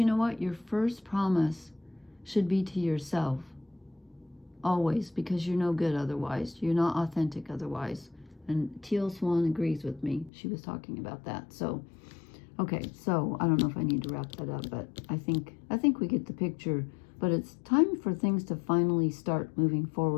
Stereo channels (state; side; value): drops out; right; at 10.3 s